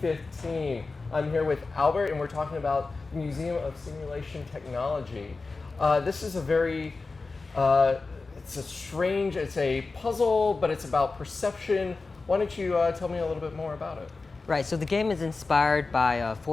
I'm here with Albert, and we're talking about the Museum of Simulation Technology. This is a very, it's a puzzle, but it's about perception. Why don't you tell me a little bit more about it? Right, so the game is inspired by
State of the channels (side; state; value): right; quieter; 3.9 dB